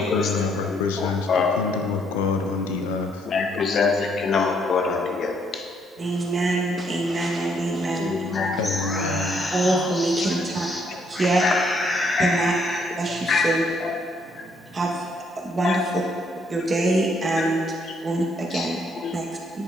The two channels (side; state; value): both; normal; correlation 0.69